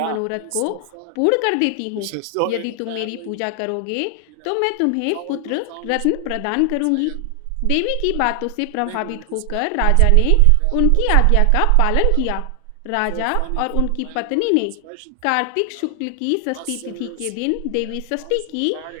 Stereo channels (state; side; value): different; both; correlation 0.00